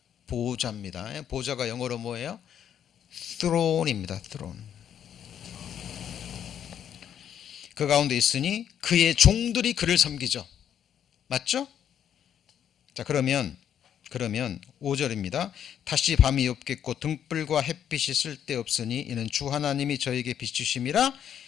보좌입니다. 보좌가 영어로 뭐예요? throne입니다. throne. 그 가운데 있으니 그의 종들이 그를 섬기죠. 맞죠? 자, 그러면 5절입니다. 다시 밤이 없겠고 등불과 햇빛이 쓸데없으니 이는 주 하나님이 저에게 비추심이라.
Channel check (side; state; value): right; quieter; 9.3 dB